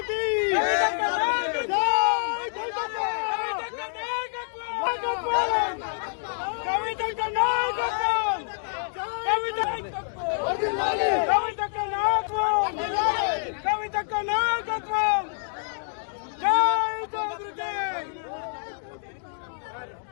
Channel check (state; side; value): silent; right; digital silence